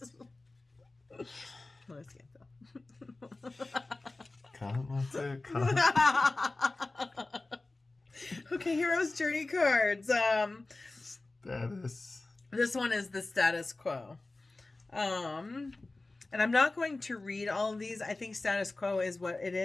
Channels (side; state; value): right; quieter; 3.1 dB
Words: Let's get though. Okay, Hero's Journey cards. Status. This one is the status quo. And I'm not going to read all of these. I think status quo is what it